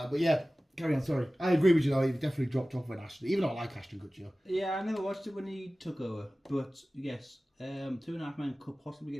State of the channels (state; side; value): normal; both; correlation 0.97